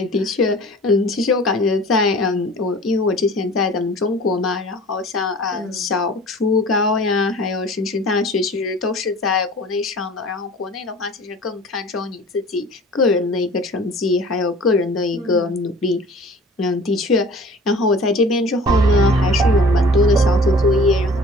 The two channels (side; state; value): both; normal; correlation 0.45